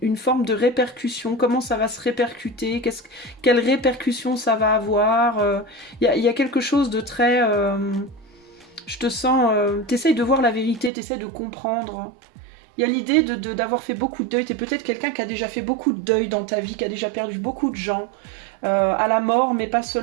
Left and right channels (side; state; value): left; drops out; at 10.9 s